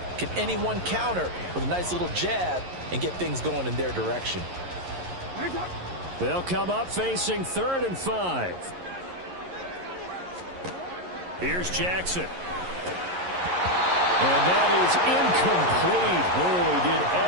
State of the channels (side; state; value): left; late; 11 ms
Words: Can anyone counter with a nice little jab and get things going in their direction? They'll come up facing 3rd and 5. Here's Jackson. And that is incomplete. Oh, he did